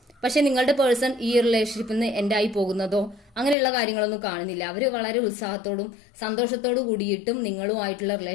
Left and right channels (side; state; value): right; drops out; at 3.6 s